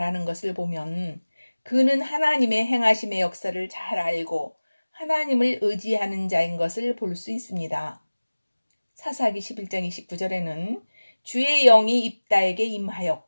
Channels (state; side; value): inverted; both; correlation -1.00